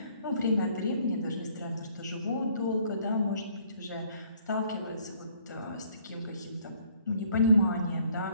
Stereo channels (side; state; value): both; inverted; correlation -0.61